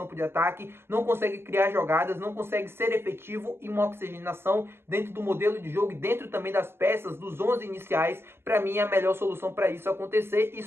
de ataque, não consegue criar jogadas, não consegue ser efetivo em uma oxigenação dentro do modelo de jogo e dentro também das peças, dos 11 iniciais para mim é a melhor solução para isso acontecer.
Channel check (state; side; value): late; left; 0.12 ms